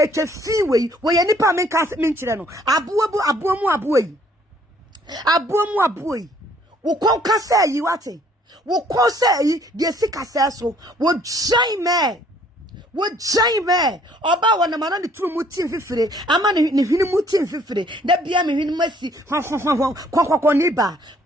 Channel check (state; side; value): normal; both; correlation 0.61